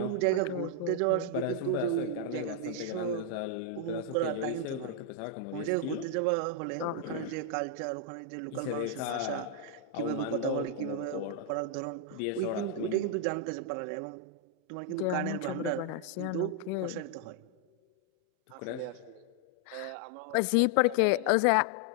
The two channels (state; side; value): different; both; correlation 0.00